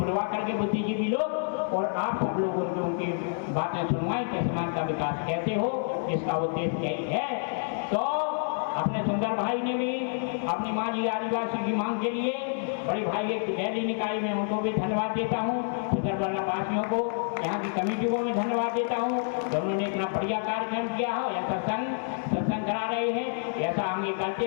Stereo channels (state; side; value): silent; right; 59 dB below the other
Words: करके बुद्धिजीवी लोग और आप सब लोगों को उनकी बातें सुनवाएं कि समाज का विकास कैसे हो, इसका उद्देश्य यही है। तो अपने सुंदर भाई ने भी अपनी माँ जी आदिवासी की मांग के लिए बड़ी भाई एक गैली निकाय में उनको भी धन्यवाद देता हूँ, सुंदरबला वासियों को, यहाँ की कमेटी को मैं धन्यवाद देता हूँ जो उन्होंने इतना बढ़िया कार्यक्रम किया हो। ऐसा सत्संग करा रहे हैं, ऐसा आगे करते